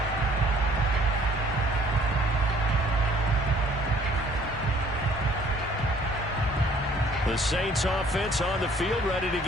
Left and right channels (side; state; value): both; normal; correlation 0.58